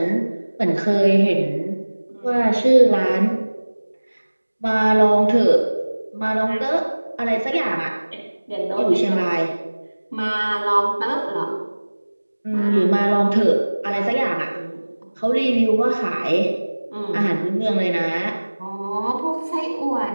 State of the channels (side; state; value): both; inverted; correlation -1.00